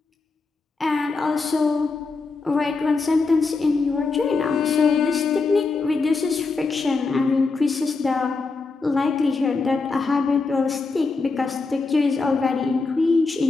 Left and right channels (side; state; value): right; quieter; 4.1 dB